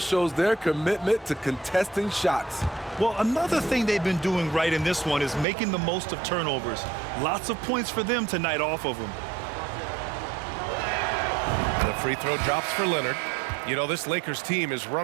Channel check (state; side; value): drops out; left; at 5.5 s